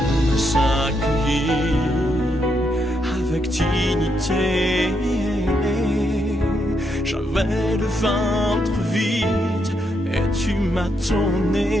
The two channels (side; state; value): both; normal; correlation 0.79